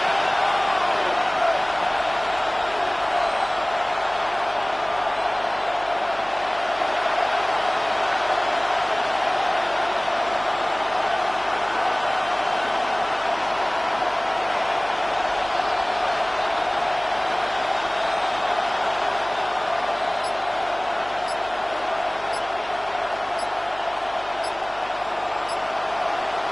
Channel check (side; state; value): right; noise; hum, 22 dB below the sound